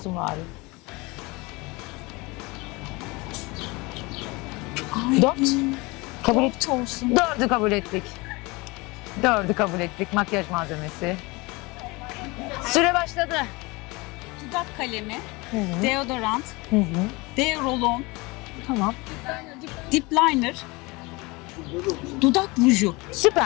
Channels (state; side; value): quieter; right; 24.7 dB